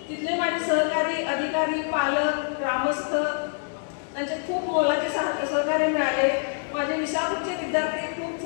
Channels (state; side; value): silent; right; 61 dB below the other